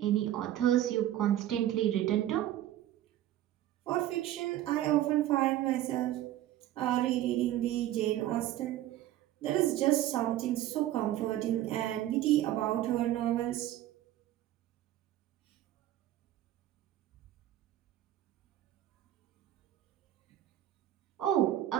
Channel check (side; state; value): left; quieter; 13.4 dB